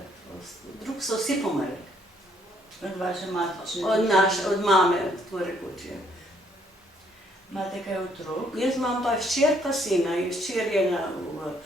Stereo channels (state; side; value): normal; both; correlation 0.67